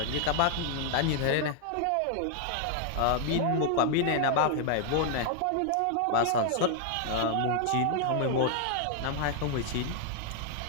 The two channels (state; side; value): different; both; correlation 0.00